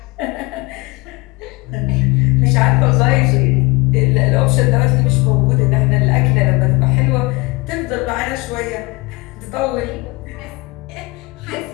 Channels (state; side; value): quieter; right; 23.3 dB